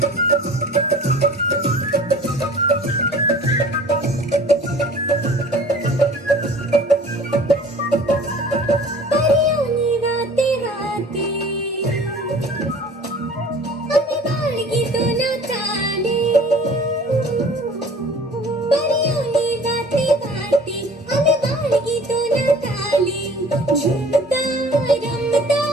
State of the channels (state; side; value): normal; both; correlation 0.47